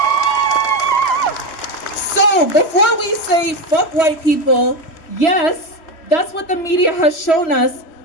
So before we say fuck white people, yes, that's what the media has shown us,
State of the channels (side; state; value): right; late; 3.0 ms